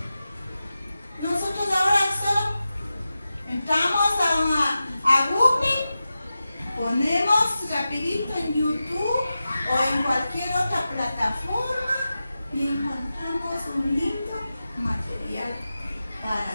Nosotros ahora solo entramos a Google, ponemos rapidito en YouTube o en cualquier otra plataforma y encontramos un lindo material para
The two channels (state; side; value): inverted; both; correlation -0.93